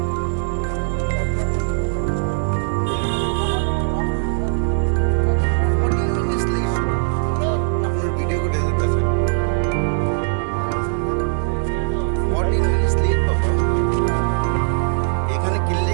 আপনার ভিডিও করে যেতেছেন 14 মিনিট লেট বাবা এখানে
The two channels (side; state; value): left; silent; digital silence